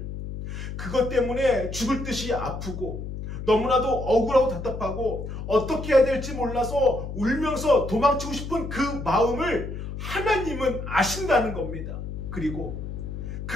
그것 때문에 죽을 듯이 아프고 너무나도 억울하고 답답하고 어떻게 해야 될지 몰라서 울면서 도망치고 싶은 그 마음을 하나님은 아신다는 겁니다. 그리고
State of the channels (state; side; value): noise; left; hum, 7 dB below the sound